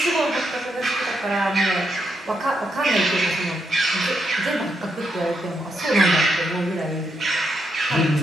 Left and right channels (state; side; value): normal; both; correlation 0.80